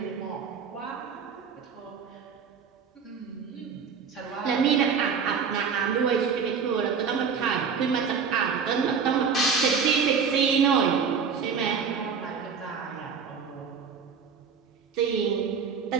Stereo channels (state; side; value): quieter; left; 6.2 dB